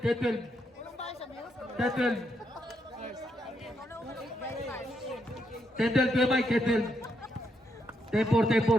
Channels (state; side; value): normal; both; correlation 0.79